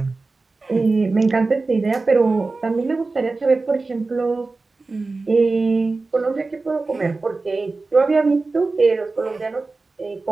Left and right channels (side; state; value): left; quieter; 3.7 dB